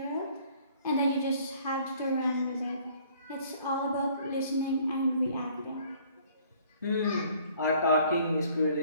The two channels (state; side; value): inverted; both; correlation -0.57